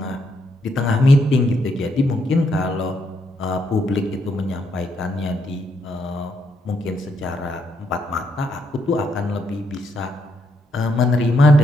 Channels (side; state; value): both; normal; correlation 0.76